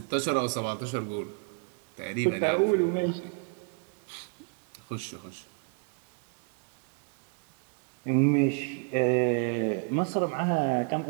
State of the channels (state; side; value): quieter; left; 38.9 dB